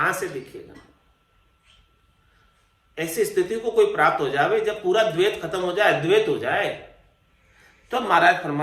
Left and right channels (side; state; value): both; identical; correlation 1.00